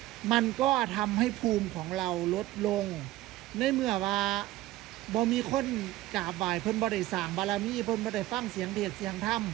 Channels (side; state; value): left; quieter; 16.5 dB